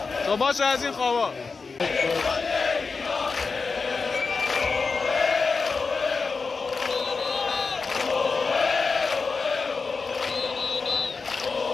تو باشه از این خوابا.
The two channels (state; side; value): quieter; right; 4.6 dB